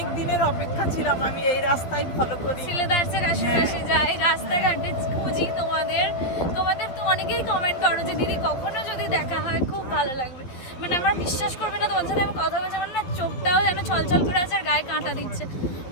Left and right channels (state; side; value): late; right; 11 ms